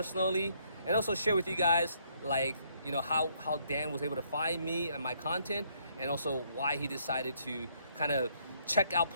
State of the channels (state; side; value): inverted; both; correlation -0.69